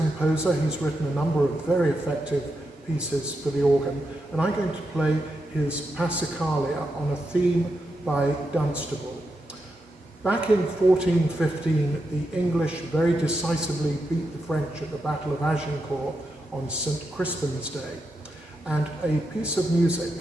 he's written a number of very effective pieces for the organ, and I'm going to play his Passacaglia on a theme by Dunstable. Back in 1415, the English very decisively beat the French at the Battle of Agincourt on St. Crispin's Day, and a piece of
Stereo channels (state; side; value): normal; both; correlation 0.86